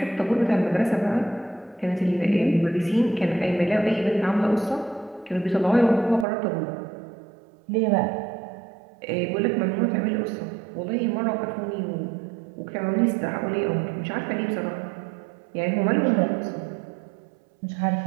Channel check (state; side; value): drops out; left; at 6.2 s